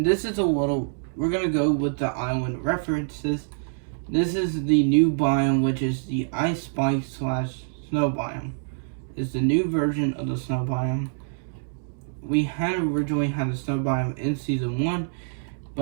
this is we're gonna go with the island references. This is the new biome, which is the ice spike / snow biome. It's the new version of the snow biome. We had originally had the snow biome in Season 1,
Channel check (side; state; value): left; silent; digital silence